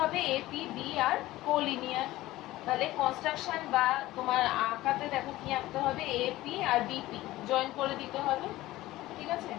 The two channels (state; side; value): quieter; right; 16.9 dB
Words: হবে A P B are collinear. তাহলে কনস্ট্রাকশন বা তোমার আঁকাতে দেখো কি আঁকতে হবে, এ পি আর বিপি জয়েন করে দিতে হবে। ঠিক আছে,